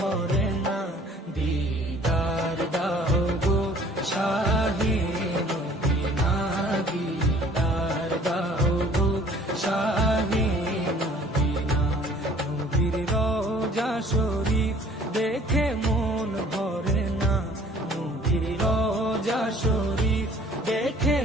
না, দিদার দাও গো শাহে মদিনা, দিদার দাও গো শাহে মদিনা। নবীর রওজা শরীফ দেখে মন ভরে না, নবীর রওজা শরীফ দেখে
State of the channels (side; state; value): both; normal; correlation 0.54